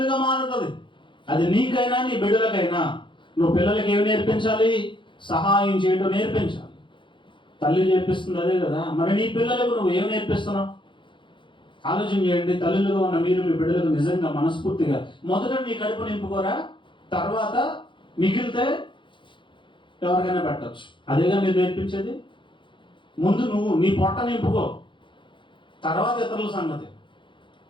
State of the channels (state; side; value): late; right; 0.24 ms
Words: మారుతుంది. అది నీకైనా నీ బిడ్డలకైనా. నువ్వు పిల్లలకి ఏమి నేర్పించాలి? సహాయం చేయడం నేర్పించాలి. తల్లి నేర్పిస్తుంది అదే కదా. మరి నీ పిల్లలకు నువ్వు ఏమి నేర్పిస్తున్నావు? ఆలోచన చేయండి. తల్లులుగా ఉన్న మీరు మీ బిడ్డలకు నిజంగా మనస్ఫూర్తిగా మొదట నీ కడుపు నింపుకోరా, తర్వాత మిగిలితే ఎవరికైనా పెట్టచ్చు. అదేగా మీరు నేర్పించేది. ముందు నువ్వు నీ పొట్ట నింపుకో, తర్వాత ఇతరుల సంగతి.